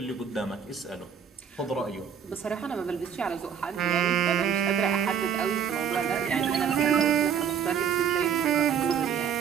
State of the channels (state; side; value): quieter; left; 7.8 dB